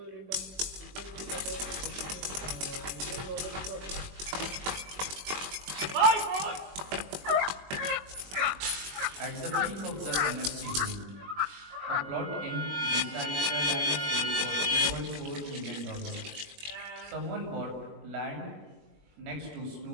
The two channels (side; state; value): left; late; 21 ms